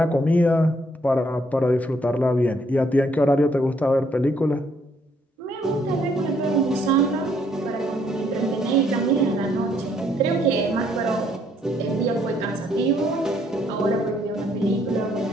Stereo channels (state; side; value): normal; both; correlation 0.68